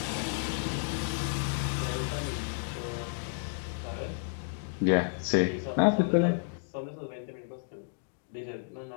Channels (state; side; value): silent; right; digital silence